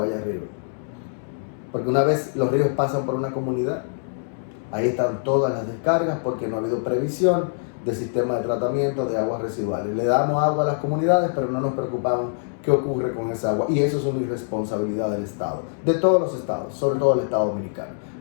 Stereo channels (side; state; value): right; silent; 63 dB below the other